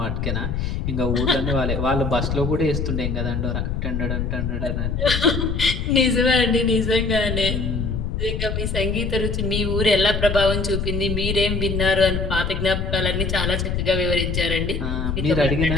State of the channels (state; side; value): noise; left; rumble, 2 dB below the sound